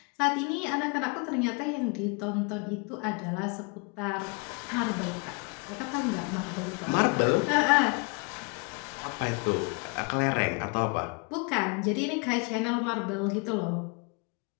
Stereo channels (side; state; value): right; quieter; 32.8 dB